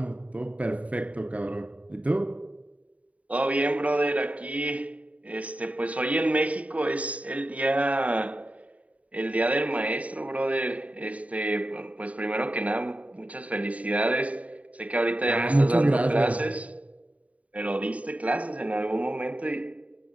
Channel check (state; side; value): late; left; 0.068 ms